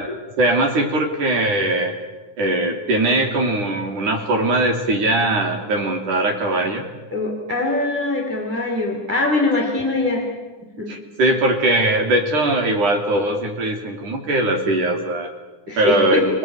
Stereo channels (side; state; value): left; late; 9.9 ms